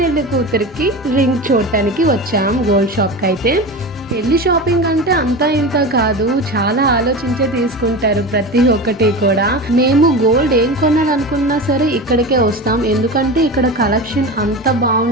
కూతురికి రింగ్ చూడటానికి వచ్చాం గోల్డ్ షాప్కి. అయితే పెళ్లి షాపింగ్ అంటే అంతా ఇంత కాదు, చాలా ఆలోచించే తీసుకుంటారు ప్రతి ఒక్కటి కూడా. మేము గోల్డ్ ఏం కొనాలనుకున్నా సరే ఇక్కడికే వస్తాం, ఎందుకంటే ఇక్కడ కలెక్షన్ అంత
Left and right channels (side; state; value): both; normal; correlation 0.27